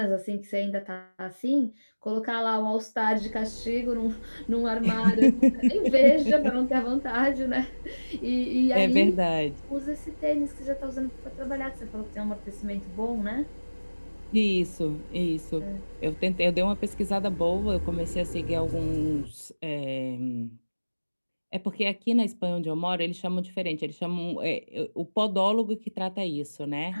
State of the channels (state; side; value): inverted; both; correlation -1.00